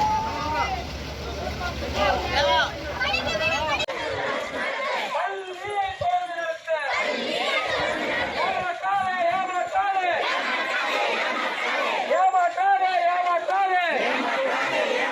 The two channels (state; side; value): identical; both; correlation 1.00